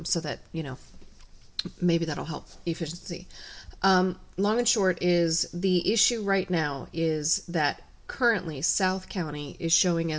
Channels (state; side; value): identical; both; correlation 1.00